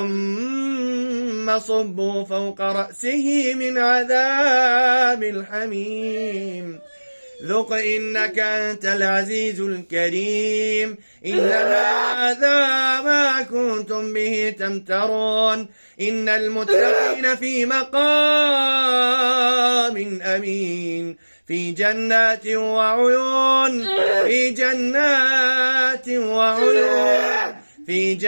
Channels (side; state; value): both; inverted; correlation -1.00